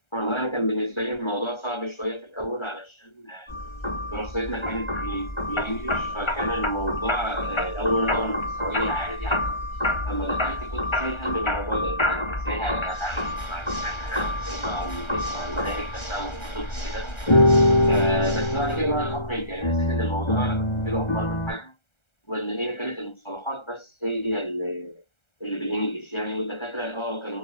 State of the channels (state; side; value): late; right; 1.3 ms